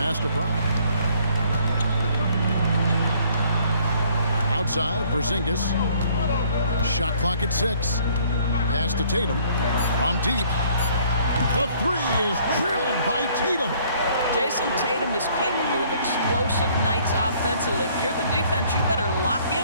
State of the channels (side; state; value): both; inverted; correlation -0.60